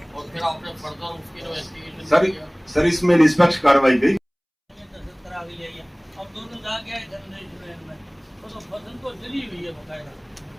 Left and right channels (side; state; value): both; identical; correlation 1.00